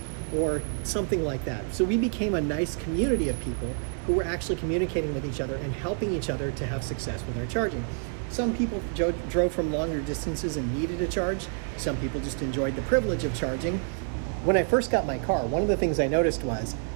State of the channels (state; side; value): silent; left; 55 dB below the other